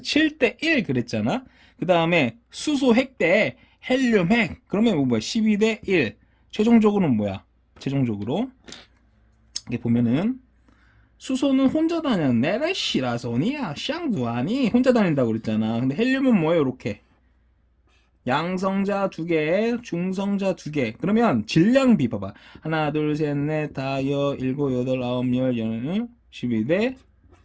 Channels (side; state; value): both; identical; correlation 1.00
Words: 7대 1 그랬잖아. 그 다음에 수소 핵 대 헬륨 핵. 그러면 뭐 뭐야? 12대 1. 최종적으로는 뭐야? 최종적으로. 이게 보면은 수소는 혼자 다녀. 네레시라소니야. 샹두아니. 혼자 다닌다고 그랬잖아. 근데 헬륨은 뭐예요? 이렇게. 양성자 2개, 중성자 2개. 그러면 질량비 봐봐. 하나, 둘, 셋, 넷, 다, 여, 일곱, 여덟, 아홉, 열, 12대